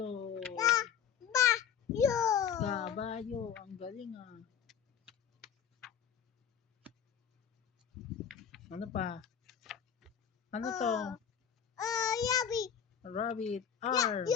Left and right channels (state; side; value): quieter; right; 8.2 dB